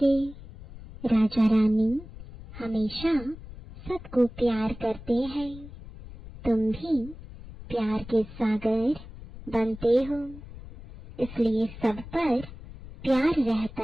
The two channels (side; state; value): left; noise; rumble, 15 dB below the sound